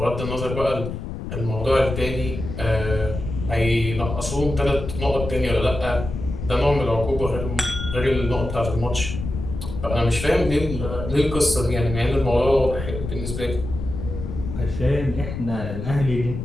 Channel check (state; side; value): noise; left; rumble, 7 dB below the sound